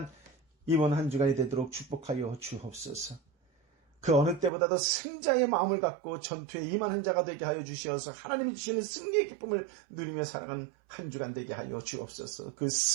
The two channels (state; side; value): drops out; left; at 4.5 s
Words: 이번 한 주간이 되도록 축복하여 주옵소서. 그 어느 때보다도 승자의 마음을 갖고 전투에 임하는 자가 되게 하여 주시어서 하나님이 주시는 승리의 기쁨을 누리며 살아가는 한 주간 되게 하여 주옵소서. 그